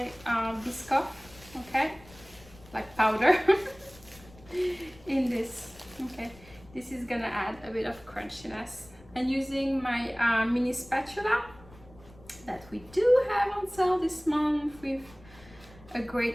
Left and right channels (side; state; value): left; noise; rumble, 22 dB below the sound